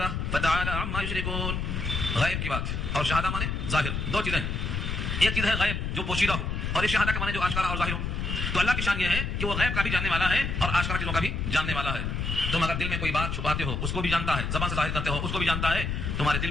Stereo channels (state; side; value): noise; left; rumble, 2 dB below the sound